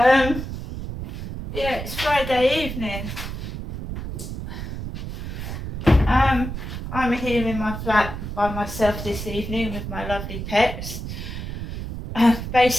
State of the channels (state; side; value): noise; right; rumble, 7 dB below the sound